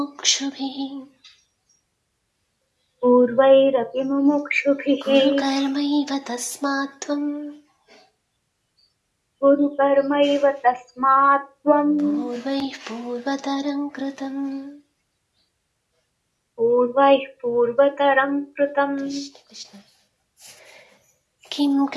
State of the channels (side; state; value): both; identical; correlation 1.00